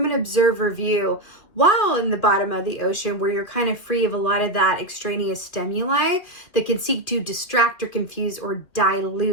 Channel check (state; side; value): late; right; 2.6 ms